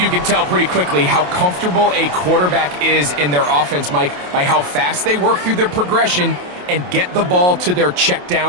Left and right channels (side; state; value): left; late; 28 ms